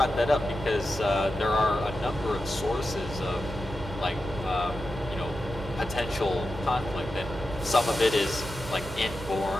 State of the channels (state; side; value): noise; right; hum, 12 dB below the sound